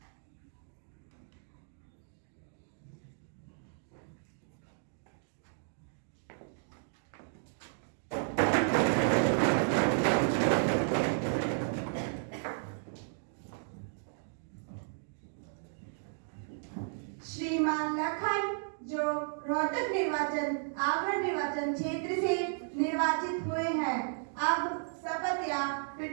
श्रीमान लखन जो रोहतक निर्वाचन आगरा निर्वाचन क्षेत्र से निर्वाचित हुए हैं, अब शपथ या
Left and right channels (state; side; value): silent; left; digital silence